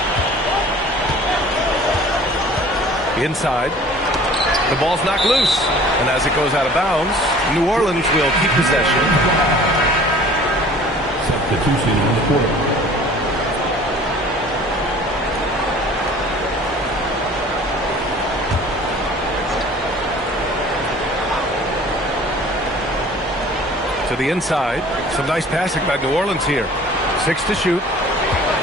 Inside. The ball's knocked loose. And as it goes out of bounds, New Orleans will keep possession. Substitution on the court. To the inside. Some nice passing by New Orleans here. 6 to shoot.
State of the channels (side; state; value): both; normal; correlation 0.48